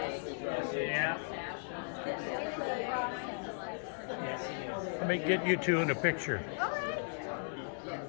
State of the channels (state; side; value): silent; right; digital silence